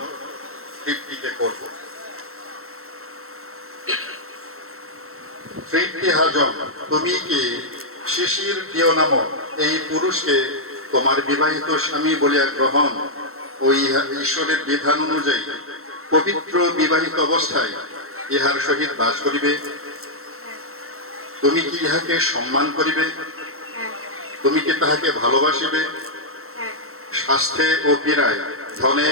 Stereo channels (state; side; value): late; left; 0.63 ms